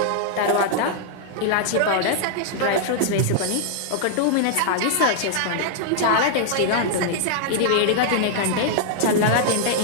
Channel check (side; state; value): both; different; correlation -0.01